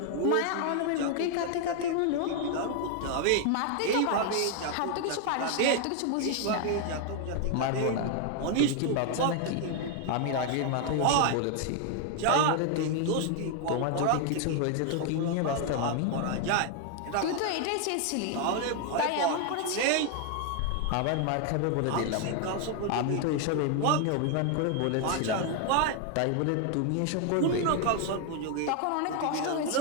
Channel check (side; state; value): both; different; correlation 0.00